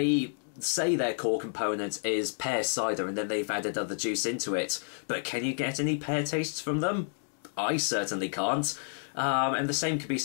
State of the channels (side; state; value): right; silent; digital silence